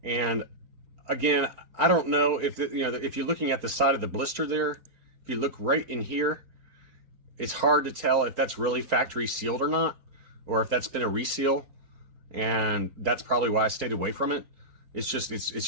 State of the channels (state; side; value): late; left; 3.9 ms